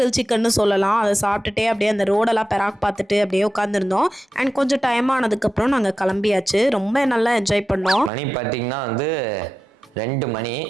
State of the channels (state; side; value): normal; both; correlation 0.92